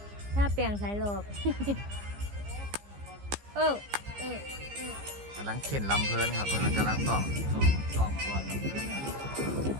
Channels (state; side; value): late; left; 15 ms